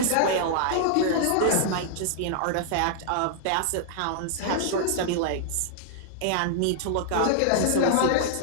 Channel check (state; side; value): different; both; correlation -0.01